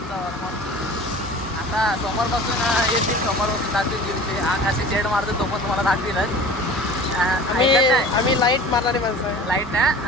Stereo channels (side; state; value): both; normal; correlation 0.41